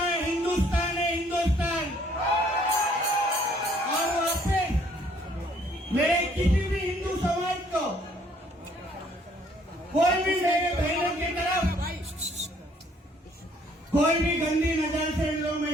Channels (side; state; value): both; normal; correlation 0.62